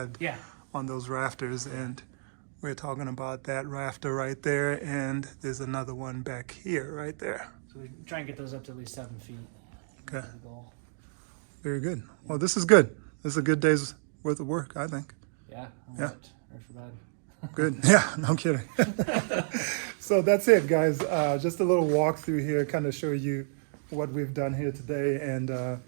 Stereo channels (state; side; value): silent; left; digital silence